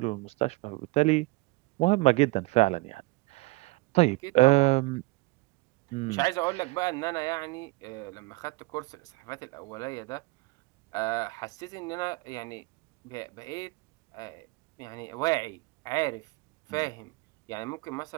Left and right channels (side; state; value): left; quieter; 23.5 dB